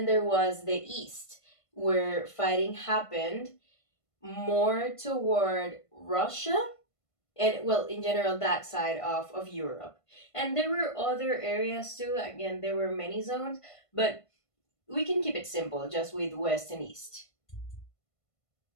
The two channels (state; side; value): late; right; 1.5 ms